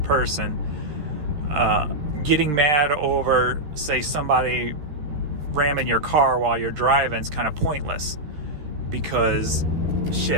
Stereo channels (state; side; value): late; left; 13 ms